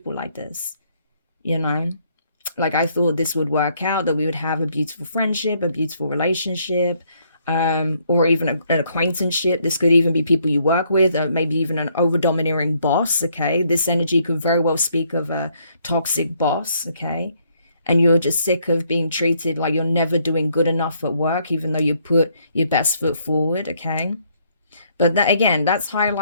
like this? You know, like I thought this would work out, that we would have a beautiful friendship, a beautiful relationship, or even an acquaintanceship. This could even be people you work with, or maybe even an over-domineering boss, okay? This energy could very well speak of a toxic boss, okay? And you're just sick of being treated like you're never doing good enough at work, even though you put your best foot forward, okay? But that, again, that's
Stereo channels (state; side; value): inverted; both; correlation -0.69